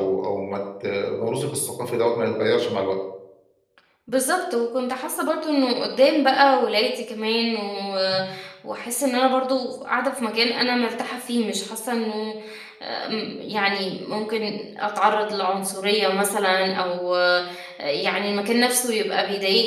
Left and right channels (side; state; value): both; identical; correlation 1.00